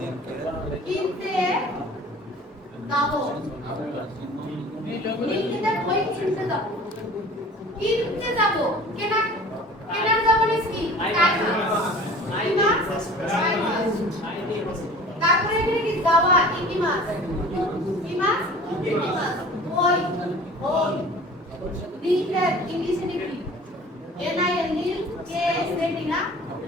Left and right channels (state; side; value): normal; both; correlation 0.44